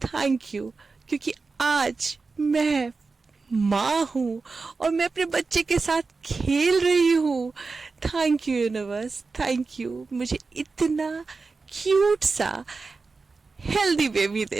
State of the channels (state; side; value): quieter; left; 4.2 dB